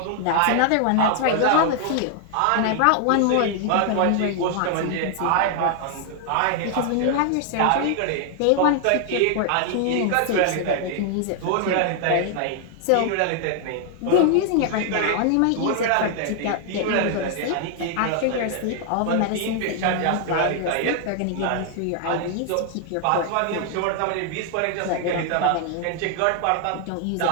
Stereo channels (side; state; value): both; different; correlation 0.00